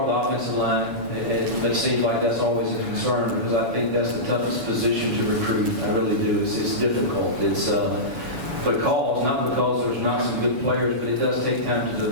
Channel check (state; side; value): late; left; 7.0 ms